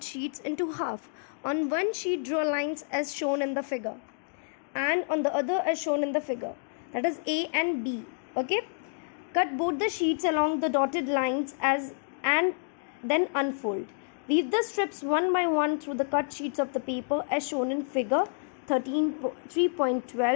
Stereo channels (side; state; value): right; silent; digital silence